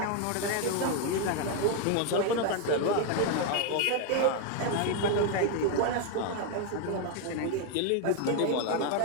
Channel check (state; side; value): different; both; correlation 0.01